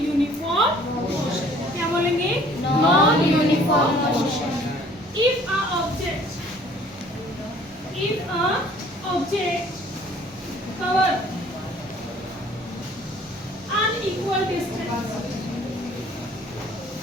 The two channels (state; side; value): normal; both; correlation 0.54